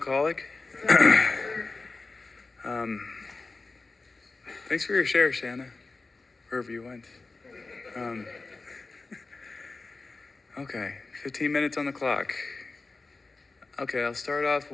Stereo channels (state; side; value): quieter; right; 3.7 dB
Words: Thanks for your share, Shanna, wherever you went. Okay, 15 minutes on the clock. Okay, I'll start off